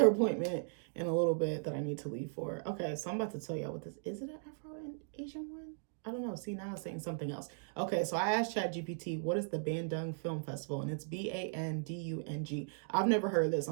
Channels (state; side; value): silent; left; digital silence